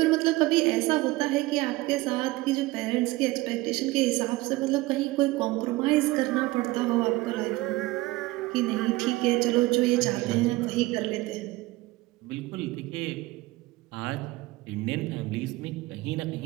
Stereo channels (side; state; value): left; quieter; 20.0 dB